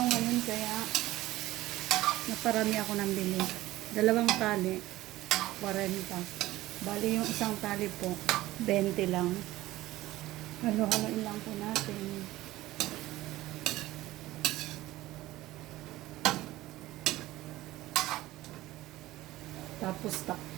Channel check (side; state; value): left; quieter; 16.8 dB